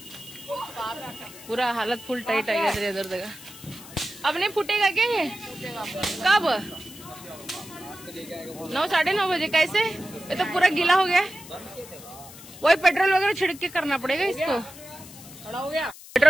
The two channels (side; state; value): left; noise; hiss, 17 dB below the sound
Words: पूरा हालत फुल टाइट आ गया इधर जगह. अब नहीं फूटेगा क्या ये? कब? 9, 9:30 बजे. कैसे? ये तो पूरा गीला हो गया. वही पेट्रोल वगैरह छिड़क के करना पड़ेगा इसको.